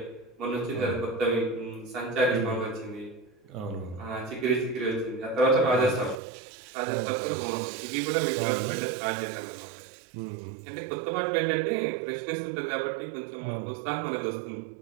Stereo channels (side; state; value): left; drops out; at 6.2 s